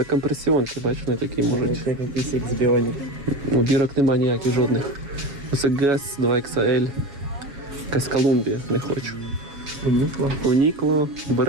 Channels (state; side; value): late; left; 7.2 ms